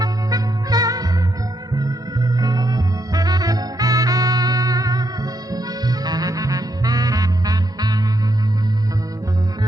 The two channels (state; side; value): normal; both; correlation 0.79